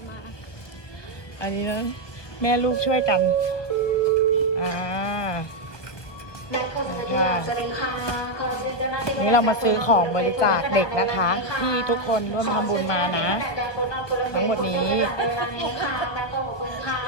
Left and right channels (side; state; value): right; late; 1.2 ms